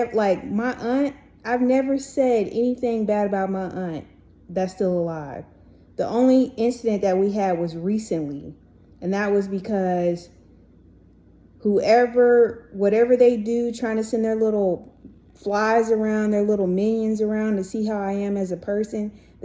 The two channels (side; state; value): both; identical; correlation 1.00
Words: like my aunt, I've never said anything bad about my aunt that's still alive. The only incident that we had was recently, and that was because whatever they do, trying to send their little flies around, their little minions around to see how I am as a person,